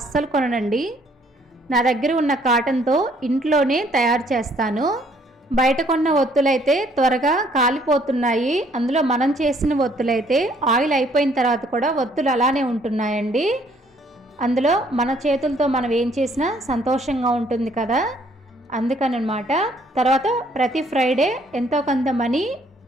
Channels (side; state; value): both; normal; correlation 0.64